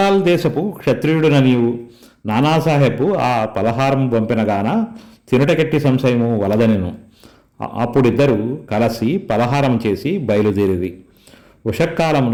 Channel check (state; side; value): identical; both; correlation 1.00